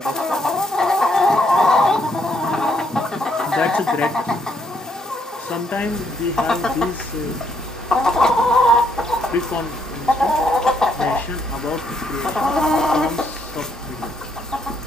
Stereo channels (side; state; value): both; normal; correlation 0.73